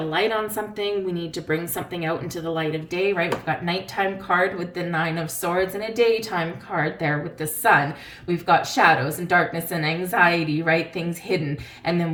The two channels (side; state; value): both; identical; correlation 1.00